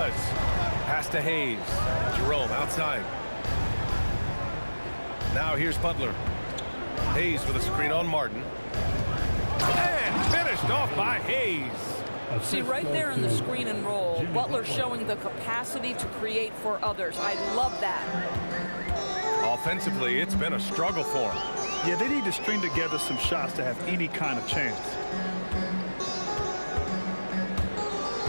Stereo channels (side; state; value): both; inverted; correlation -1.00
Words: Pass to Hayes. Jerome outside. Now here's Butler. Hayes with a screen on Martin. And finished off by Hayes. See, right there in the screen and roll, Butler showing the capacity to create for others. I love that. Offensively, it's been a struggle for him. Yeah, they need to string together some shots to have any kind of chance.